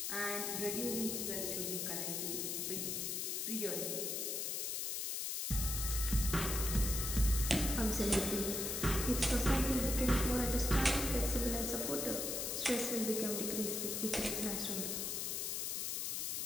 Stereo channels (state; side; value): noise; left; hiss, 1 dB below the sound